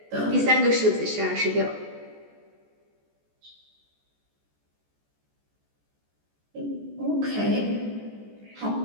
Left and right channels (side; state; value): left; late; 14 ms